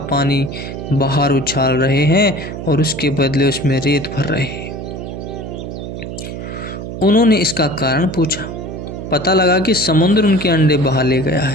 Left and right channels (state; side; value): noise; right; hum, 8 dB below the sound